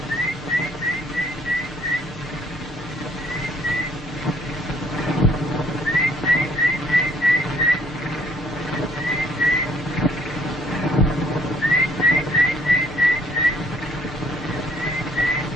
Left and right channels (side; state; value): both; normal; correlation 0.63